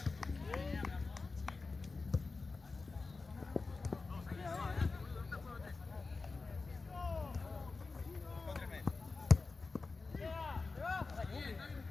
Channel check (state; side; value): quieter; right; 4.0 dB